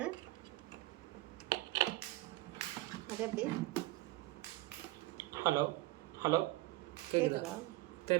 அது எப்படி? ஹலோ ஹலோ கேட்குதா?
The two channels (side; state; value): left; quieter; 18.5 dB